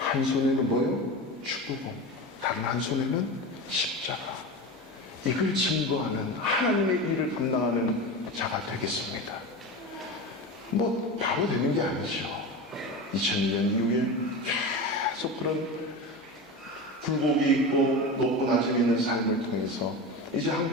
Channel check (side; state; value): both; normal; correlation 0.26